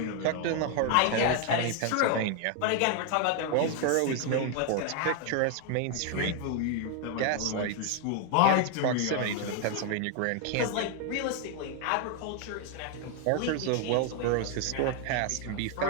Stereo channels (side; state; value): both; different; correlation 0.00